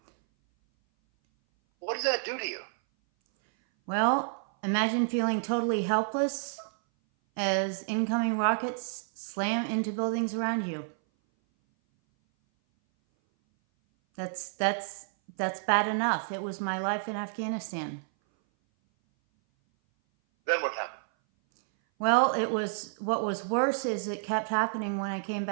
What does that do to you? Well, imagine feeling totally helpless as incoming rockets slam into buildings around you. That's bad enough. It was my life in Afghanistan. Then what happened? Well, what was worse is it kept happening when I came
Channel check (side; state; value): left; silent; 57 dB below the other